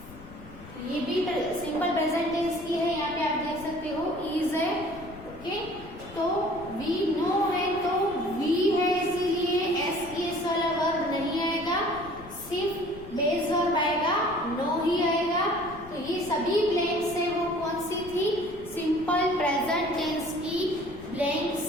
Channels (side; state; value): left; noise; rumble, 18 dB below the sound